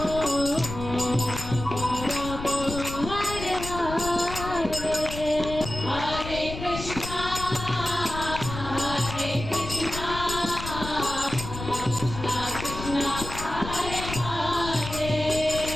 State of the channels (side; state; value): left; noise; rumble, 8 dB below the sound